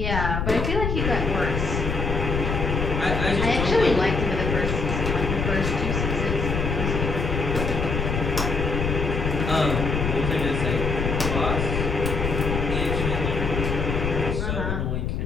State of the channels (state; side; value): noise; left; rumble, 1 dB below the sound